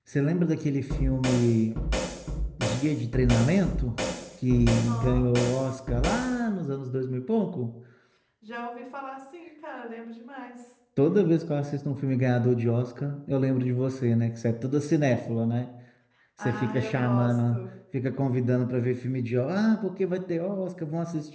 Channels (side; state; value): both; identical; correlation 1.00